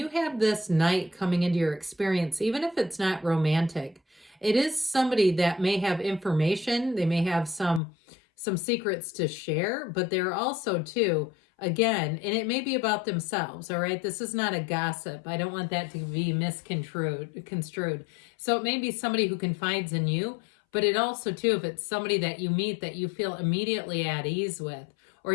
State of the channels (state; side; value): drops out; right; at 7.8 s